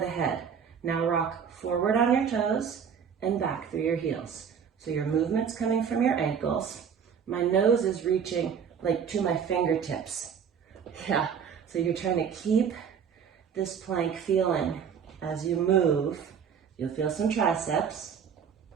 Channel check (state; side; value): quieter; left; 7.3 dB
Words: head. Now rock forward on your toes and back through your heels. So your movement's coming from your ankles. My nose is reaching like to my fingertips. Yeah, so you're trying to keep this plank feeling. As you move, you'll feel some triceps